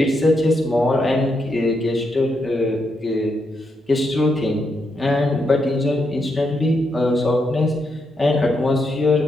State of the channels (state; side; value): normal; both; correlation 0.81